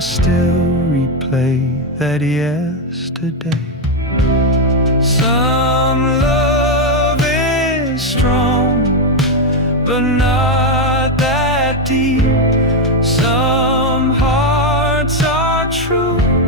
replay that yesterday. Some love is strong, but not that deep. Some hearts are true,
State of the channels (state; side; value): normal; both; correlation 0.05